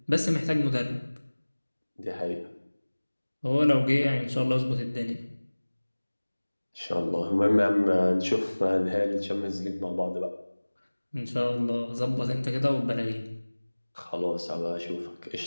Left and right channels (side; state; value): both; inverted; correlation -1.00